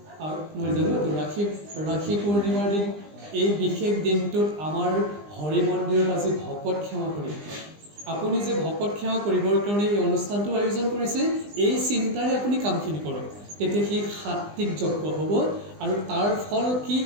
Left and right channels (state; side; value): late; left; 20 ms